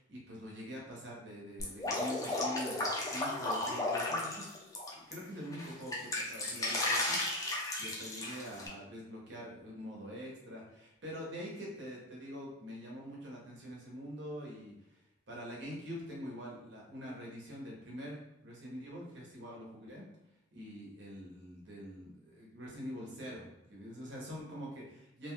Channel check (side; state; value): both; normal; correlation 0.20